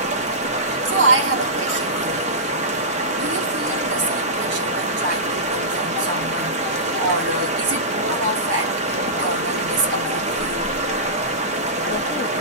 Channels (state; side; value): normal; both; correlation -0.18